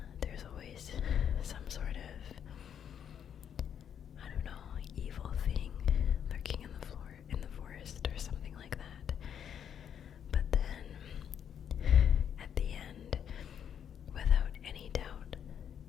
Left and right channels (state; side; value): quieter; right; 8.6 dB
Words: There's always some sort of, I don't know, evil thing lurking in the forest or something like that. But then, at the end, without any doubt,